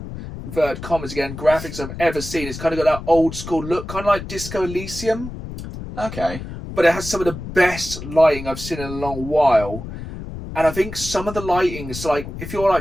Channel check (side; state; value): left; noise; rumble, 10 dB below the sound